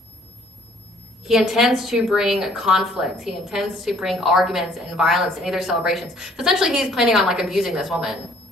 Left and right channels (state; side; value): normal; both; correlation 0.60